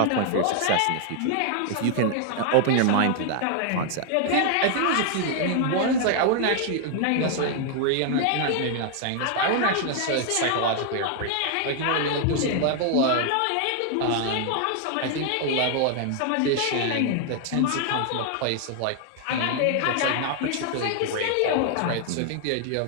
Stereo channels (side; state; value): both; different; correlation 0.00